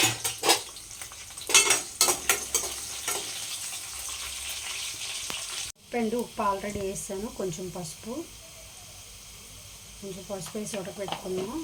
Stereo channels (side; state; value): both; identical; correlation 1.00